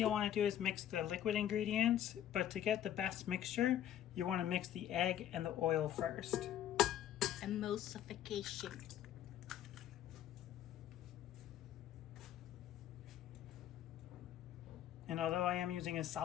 want to do is mix the liquid ingredients, but to get the best mixture, you want to mix the egg and the oil first. Emulsification. And although I am using a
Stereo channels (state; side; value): quieter; right; 11.2 dB